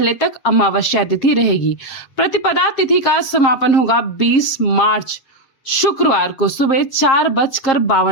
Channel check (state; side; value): late; right; 7.5 ms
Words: तक अमावस्या तिथि रहेगी। प्रतिपदा तिथि का समापन होगा 20 मार्च शुक्रवार को सुबह